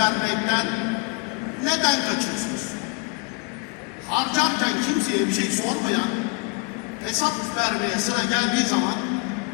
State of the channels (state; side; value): quieter; right; 31.1 dB